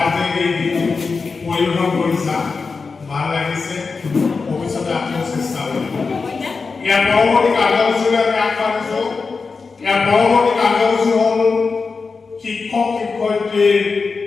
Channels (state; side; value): quieter; right; 4.6 dB